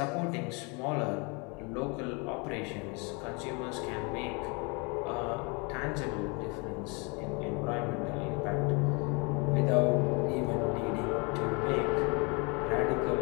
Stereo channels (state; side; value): quieter; right; 31.1 dB